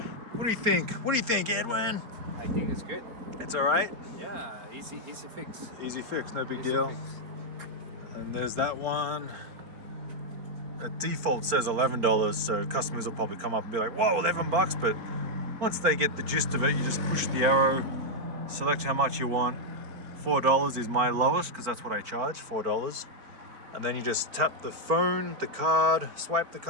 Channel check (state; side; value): late; left; 4.5 ms